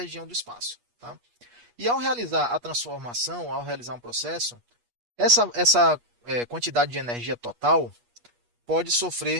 do espaço. Tá? E ao realizar a transformação, ao realizar um processo, essa quantidade de energia total pode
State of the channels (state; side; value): late; left; 8.4 ms